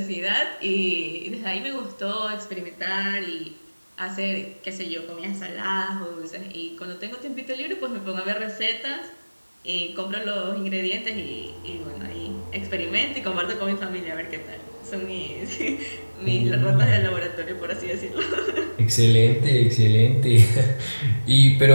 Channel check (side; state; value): both; inverted; correlation -1.00